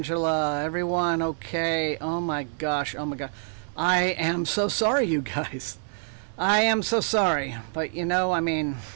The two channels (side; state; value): left; silent; 61 dB below the other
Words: everyone okay? Oh my gosh, oh my god. I am so sorry, you guys. I am so sorry. But I mean,